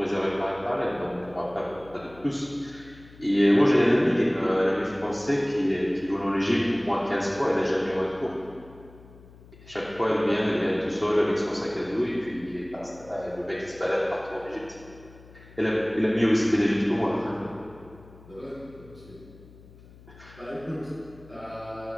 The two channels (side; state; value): left; noise; hum, 22 dB below the sound